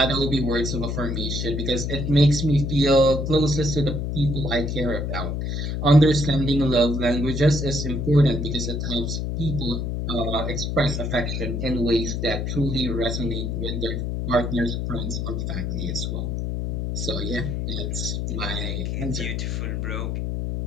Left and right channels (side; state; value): left; noise; hum, 2 dB below the sound